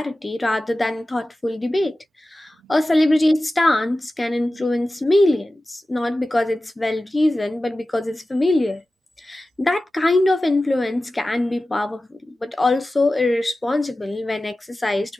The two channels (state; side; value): normal; both; correlation 0.95